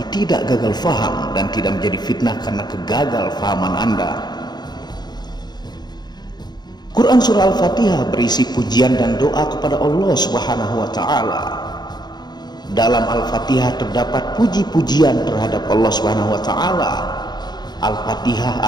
tidak gagal faham dan tidak menjadi fitnah karena kegagal fahaman Anda. Quran Surah Al-Fatihah berisi pujian dan doa kepada Allah Subhanahu wa Ta'ala. Dalam Al-Fatihah terdapat puji-pujian terhadap Allah Subhanahu wa Ta'ala. Al-Fatihah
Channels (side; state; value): right; late; 0.20 ms